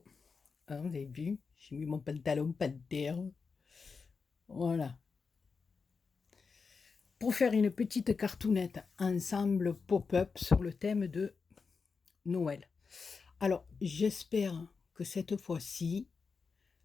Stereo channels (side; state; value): right; quieter; 5.0 dB